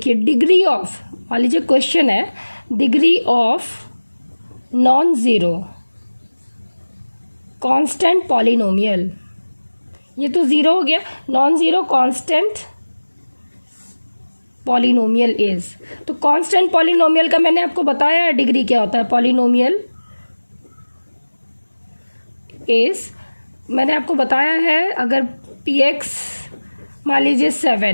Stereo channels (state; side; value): inverted; both; correlation -1.00